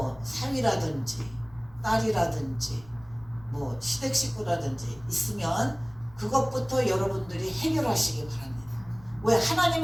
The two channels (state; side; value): noise; left; rumble, 24 dB below the sound